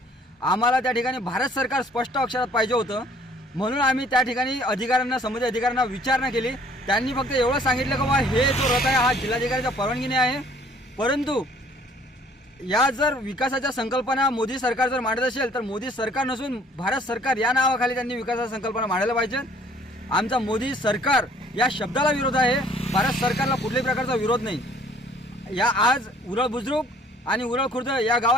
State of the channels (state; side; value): normal; both; correlation 0.58